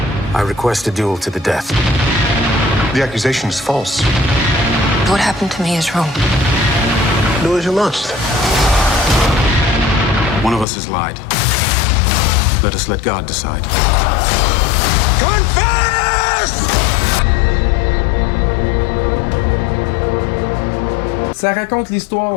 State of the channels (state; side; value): drops out; right; at 10.7 s